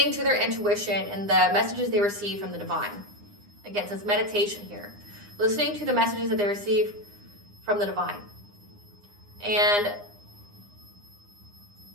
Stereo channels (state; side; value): late; left; 9.8 ms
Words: to their intuition and the messages they receive from the divine. Again, so it's meditation here. Listening to the messages that they receive from the divine. And